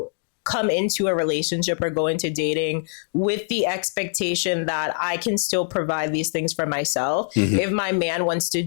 come into a relationship or go into dating with the expectation that I can still provide these things for myself. Mm-hmm. If my man wants to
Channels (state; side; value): silent; right; digital silence